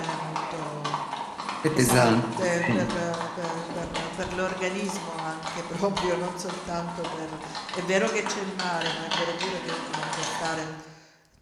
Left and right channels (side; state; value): both; identical; correlation 1.00